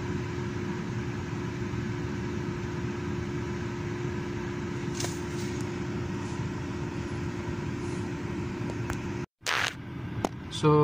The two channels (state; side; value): identical; both; correlation 1.00